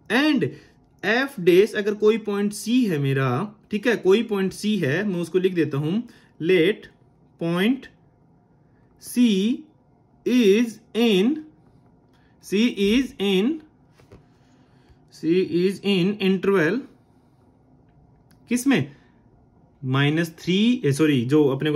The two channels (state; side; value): identical; both; correlation 1.00